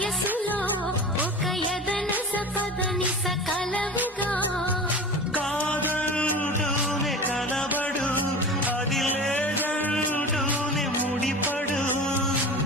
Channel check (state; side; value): normal; both; correlation 0.33